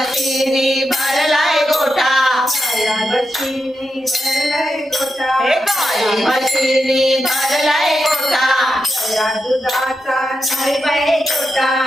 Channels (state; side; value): normal; both; correlation 0.87